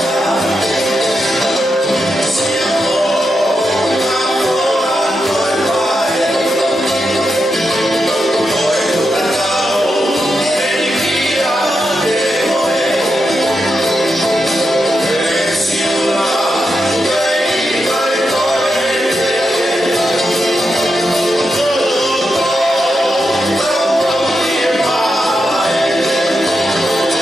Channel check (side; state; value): both; normal; correlation 0.86